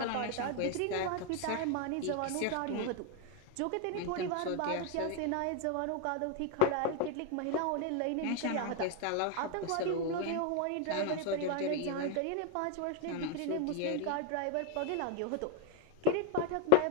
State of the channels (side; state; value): both; different; correlation 0.01